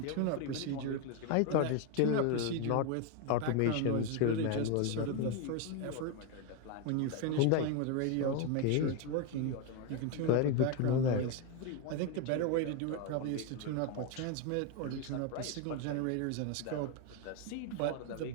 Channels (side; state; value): both; different; correlation 0.02